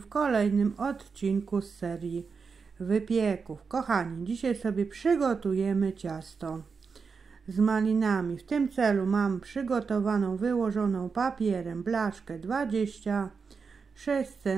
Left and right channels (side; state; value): left; quieter; 5.3 dB